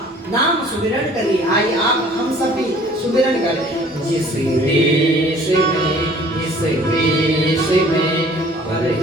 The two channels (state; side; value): normal; both; correlation 0.52